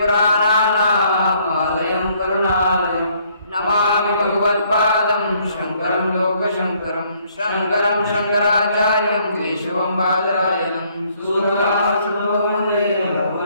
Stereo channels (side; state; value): both; inverted; correlation -0.66